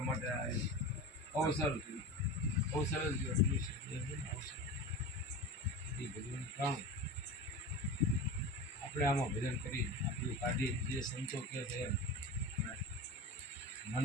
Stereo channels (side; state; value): both; normal; correlation 0.29